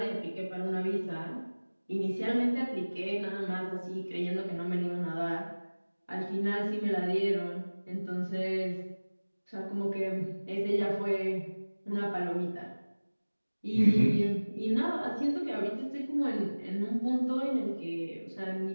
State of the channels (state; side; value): inverted; both; correlation -1.00